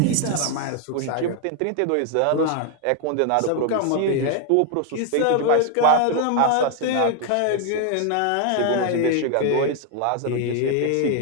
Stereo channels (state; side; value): different; both; correlation 0.01